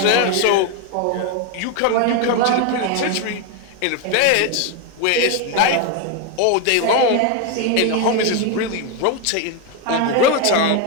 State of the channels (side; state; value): both; different; correlation 0.01